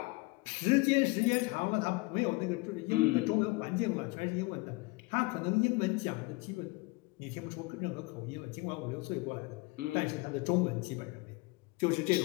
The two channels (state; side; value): quieter; right; 25.4 dB